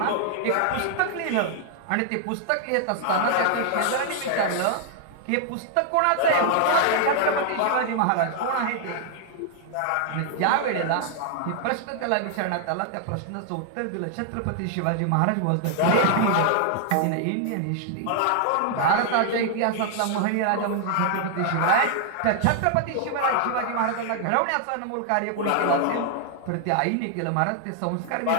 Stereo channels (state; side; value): different; both; correlation -0.01